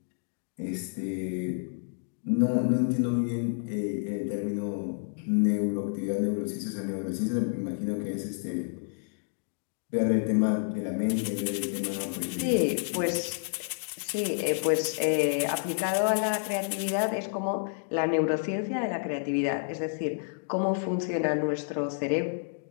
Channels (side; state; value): right; silent; digital silence